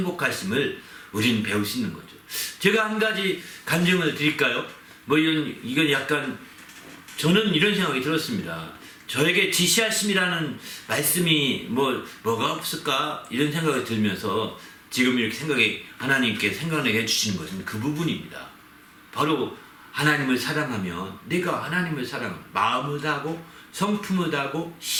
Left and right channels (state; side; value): identical; both; correlation 1.00